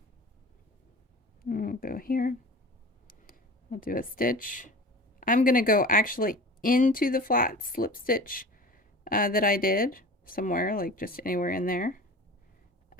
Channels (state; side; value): normal; both; correlation 0.38